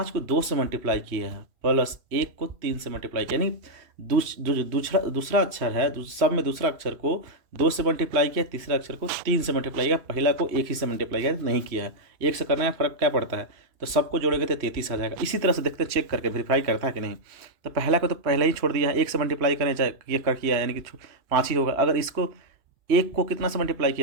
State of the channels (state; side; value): late; left; 2.8 ms